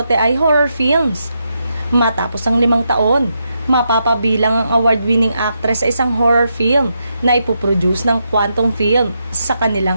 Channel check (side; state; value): both; inverted; correlation -0.83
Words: ay horror films. Matapos ang 5 taon, mapapabilang ang award-winning actress sa isang horror film na ipoproduce ng Quantum Film sa